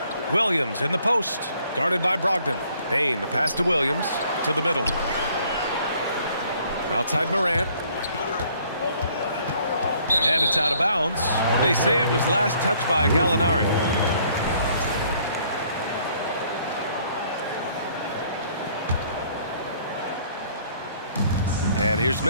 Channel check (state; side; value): inverted; both; correlation -0.62